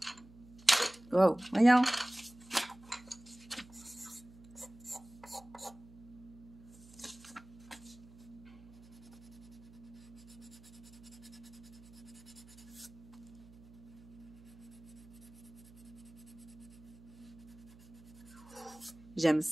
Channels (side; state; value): right; noise; hum, 20 dB below the sound